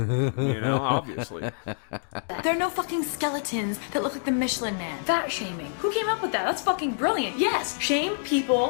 know, obviously. There are no fucking skeletons that look like the Michelin Man. Fat shaming. Who came up with that? That's fucking brilliant. Yes, shame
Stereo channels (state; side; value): silent; right; digital silence